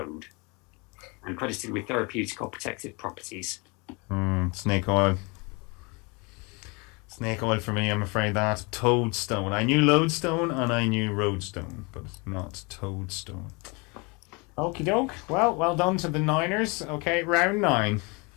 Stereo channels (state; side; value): quieter; right; 29.3 dB